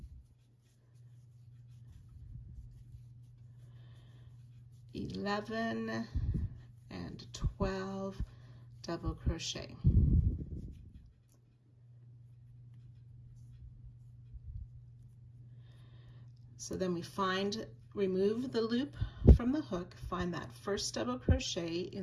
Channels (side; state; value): both; identical; correlation 1.00